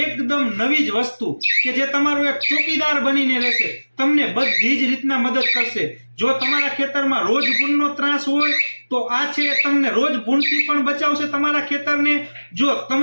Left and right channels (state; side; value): inverted; both; correlation -1.00